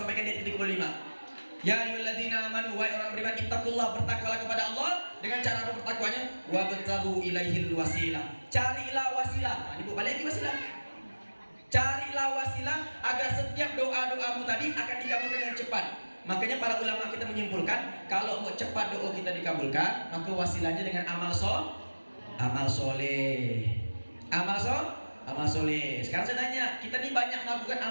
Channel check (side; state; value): both; inverted; correlation -1.00